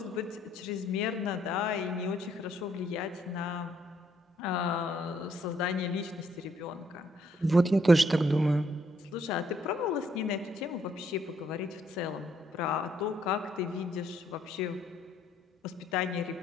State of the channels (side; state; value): both; normal; correlation 0.70